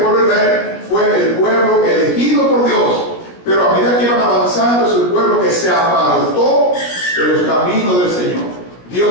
pueblo de Israel fue el pueblo elegido por Dios, pero a medida que iban avanzando es el pueblo que se apartó de los caminos del Señor.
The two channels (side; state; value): right; late; 17 ms